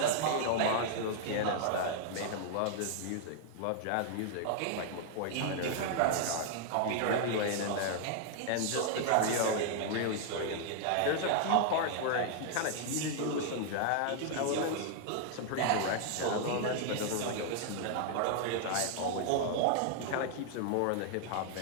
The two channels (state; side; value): different; both; correlation 0.00